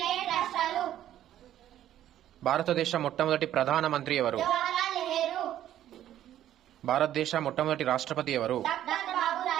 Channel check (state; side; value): quieter; left; 11.9 dB